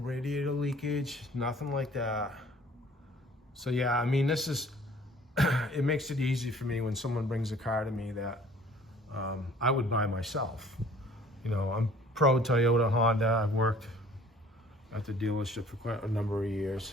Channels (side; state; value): both; normal; correlation 0.53